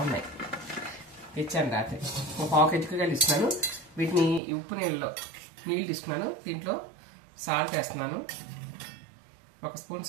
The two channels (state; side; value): drops out; left; at 4.4 s